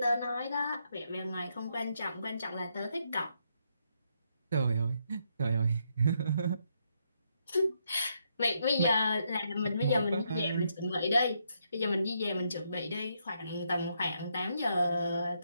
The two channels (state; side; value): inverted; both; correlation -0.77